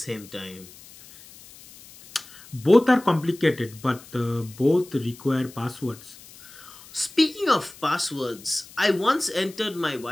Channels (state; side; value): noise; left; hiss, 20 dB below the sound